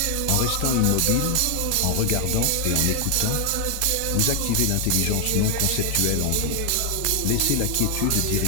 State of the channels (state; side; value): different; both; correlation 0.00